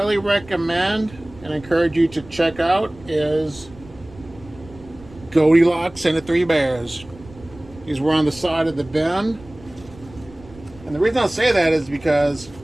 recommend and encourage you to check out is Goldilocks and the Three Bears. These were on the side of the bin. And the reason I say that is because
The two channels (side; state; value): right; noise; rumble, 21 dB below the sound